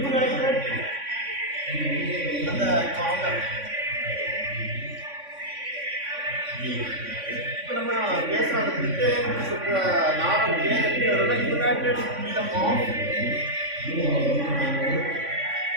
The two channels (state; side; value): late; left; 3.5 ms